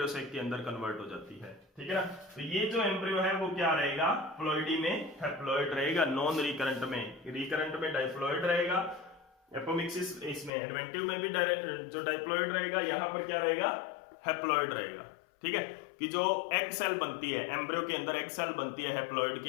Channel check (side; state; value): right; drops out; at 10.5 s